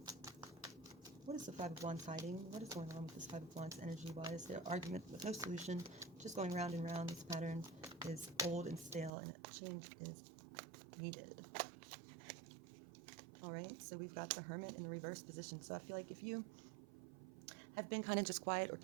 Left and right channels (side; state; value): left; drops out; at 9.1 s